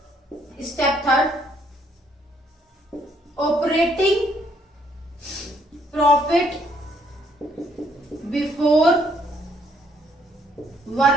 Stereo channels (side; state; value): both; normal; correlation 0.68